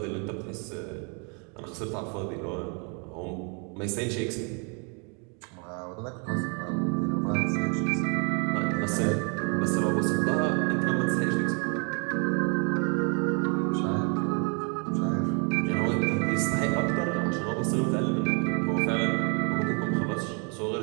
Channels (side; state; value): left; quieter; 35.9 dB